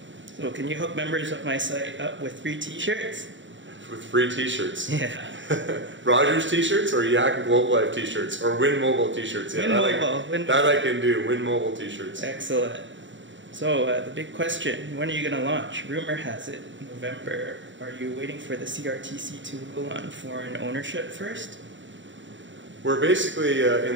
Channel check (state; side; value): late; left; 0.55 ms